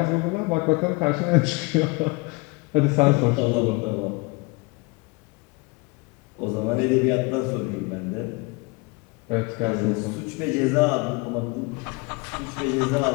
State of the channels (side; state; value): right; quieter; 27.0 dB